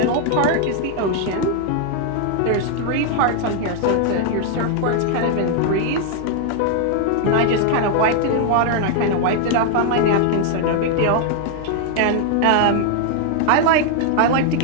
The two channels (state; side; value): different; both; correlation 0.00